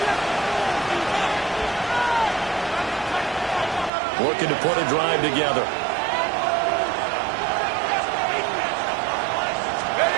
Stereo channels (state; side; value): drops out; left; at 3.9 s